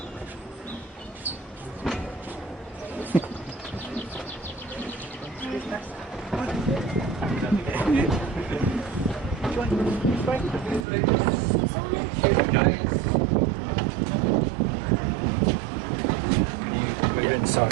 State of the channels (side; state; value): left; drops out; at 10.9 s